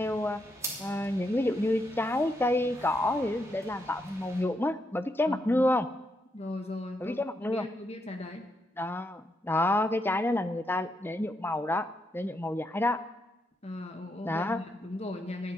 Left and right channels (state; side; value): normal; both; correlation 0.80